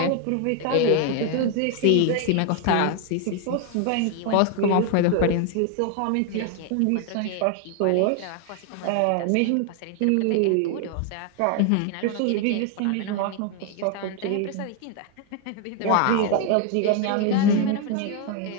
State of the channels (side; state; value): both; different; correlation 0.01